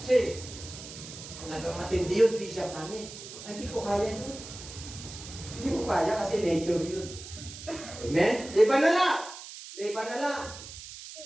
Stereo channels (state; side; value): noise; right; hiss, 13 dB below the sound